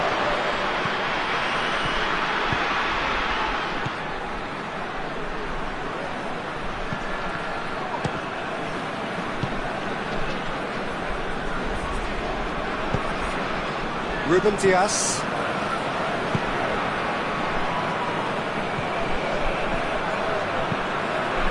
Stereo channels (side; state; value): both; identical; correlation 1.00